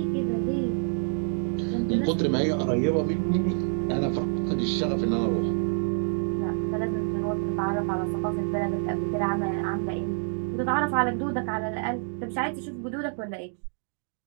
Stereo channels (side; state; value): left; silent; 57 dB below the other